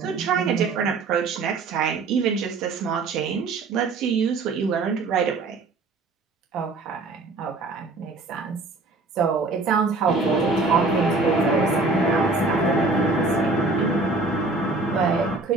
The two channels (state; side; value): quieter; left; 3.6 dB